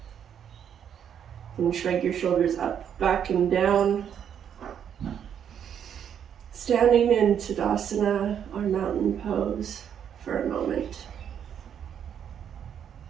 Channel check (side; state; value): left; quieter; 8.7 dB